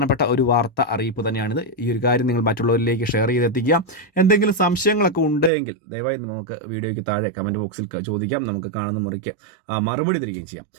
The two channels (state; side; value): drops out; left; at 5.5 s